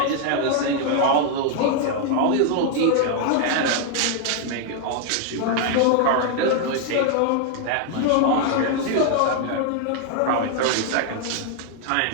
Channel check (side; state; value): both; different; correlation 0.00